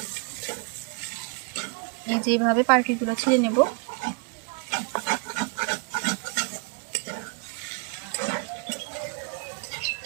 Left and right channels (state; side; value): quieter; left; 35.0 dB